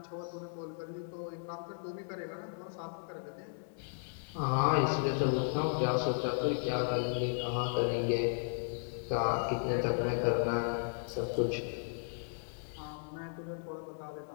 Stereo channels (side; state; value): right; silent; digital silence